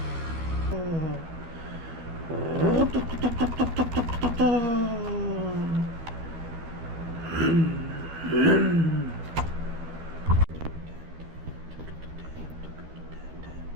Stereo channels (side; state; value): left; late; 13 ms